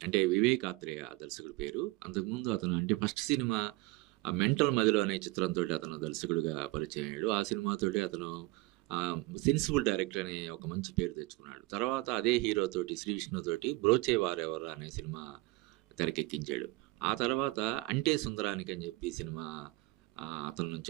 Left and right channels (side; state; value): left; quieter; 21.9 dB